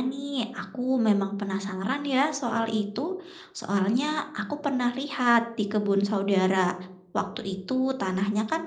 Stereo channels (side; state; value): both; identical; correlation 1.00